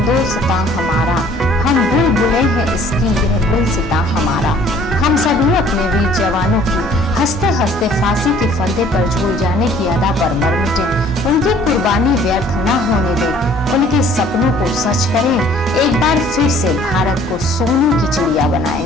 हमारा, हम बुलबुलें हैं इसकी यह गुलसिता हमारा। हम सभी अपने वीर जवानों की हंसते हंसते फांसी के फंदे पर झूल जाने की अदा पर मर मिटे, उनकी कुर्बानी व्यर्थ न होने दें, उनके सपनों को सच करें, एक बार फिर से भारत को सोने की चिड़िया बनाएं।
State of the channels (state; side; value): normal; both; correlation 0.56